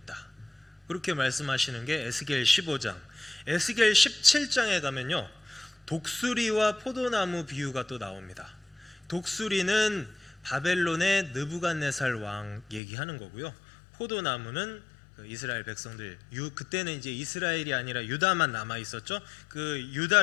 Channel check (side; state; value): right; drops out; at 12.8 s